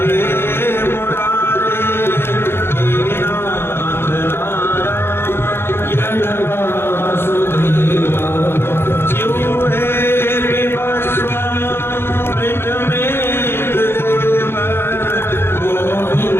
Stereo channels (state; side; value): late; right; 0.11 ms